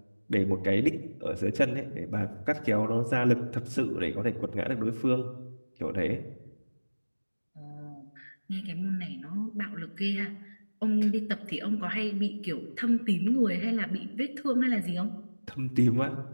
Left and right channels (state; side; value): inverted; both; correlation -1.00